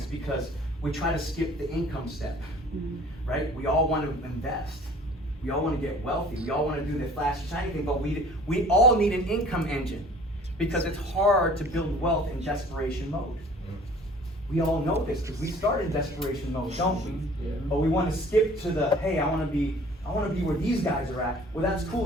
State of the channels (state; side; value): normal; both; correlation 0.50